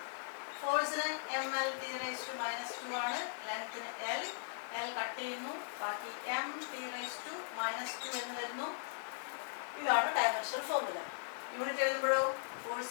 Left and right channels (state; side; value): silent; right; digital silence